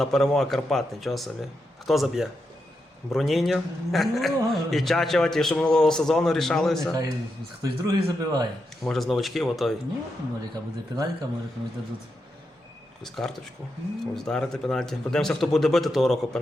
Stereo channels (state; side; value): normal; both; correlation 0.85